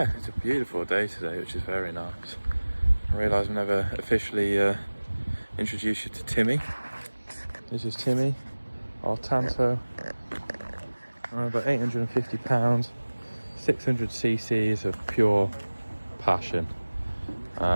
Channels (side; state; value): both; inverted; correlation -1.00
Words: it's a beautiful day today, which is very nice. I realise I've never officially introduced you to Timmy. This is Timmy, our Tanto. About 850 pounds, 600 cc's of pure passion.